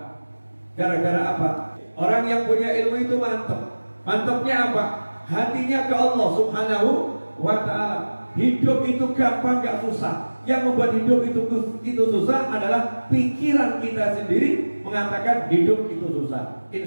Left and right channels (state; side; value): inverted; both; correlation -1.00